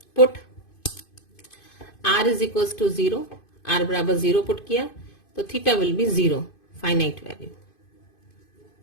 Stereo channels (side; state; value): right; late; 2.5 ms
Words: Put r is equal to 0, r बराबर 0 पुट किया, तो theta will be 0, finite value.